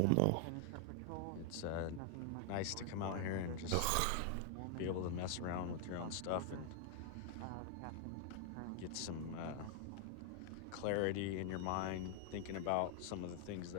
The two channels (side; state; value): both; different; correlation 0.00